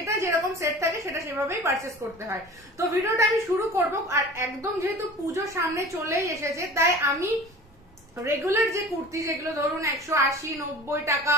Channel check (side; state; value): both; normal; correlation 0.40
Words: যেরকম সেট থাকে সেটা সেভাবেই পারচেস করতে হয়। তো ভিডিওটা আমি শুরু করব। আর একদম যেহেতু পুজো সামনে চলেই এসেছে, তাই আমি রেগুলার যে কুর্তি, যেগুলো ধরুন 180, 90 টাকা,